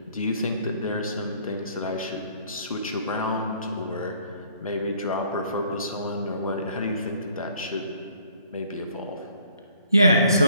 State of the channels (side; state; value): both; inverted; correlation -0.60